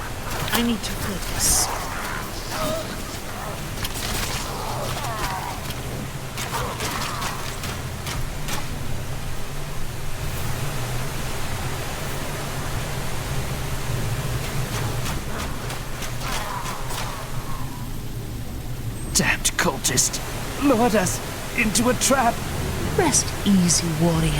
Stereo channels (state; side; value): identical; both; correlation 1.00